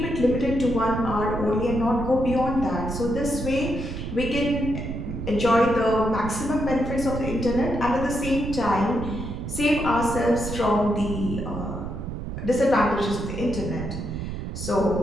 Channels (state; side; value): noise; right; rumble, 6 dB below the sound